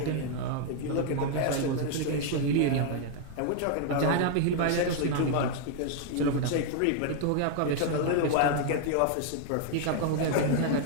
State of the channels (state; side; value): different; both; correlation 0.00